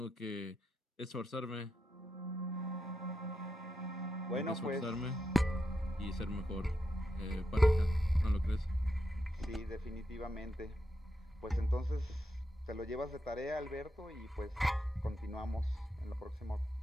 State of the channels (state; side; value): normal; both; correlation 0.85